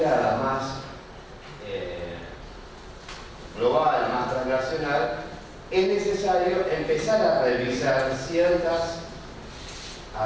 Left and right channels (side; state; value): both; identical; correlation 1.00